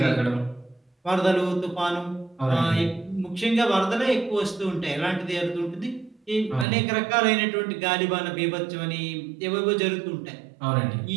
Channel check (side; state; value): left; drops out; at 6.7 s